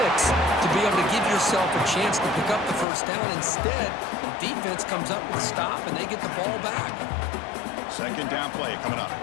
to be able to give yourself a chance to pick up the first down. Instead, the defense comes up with a stop and they get the ball back. Second down play coming up.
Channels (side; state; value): right; drops out; at 2.9 s